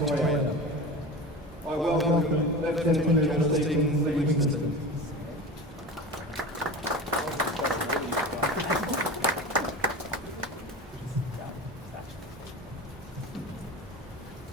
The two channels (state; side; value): normal; both; correlation 0.31